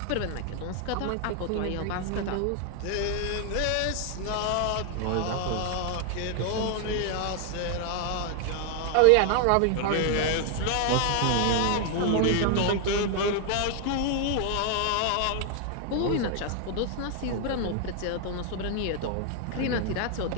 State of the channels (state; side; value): different; both; correlation 0.00